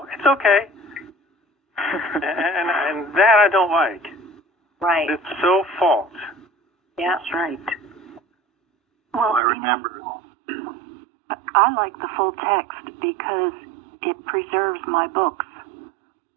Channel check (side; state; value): left; drops out; at 9.4 s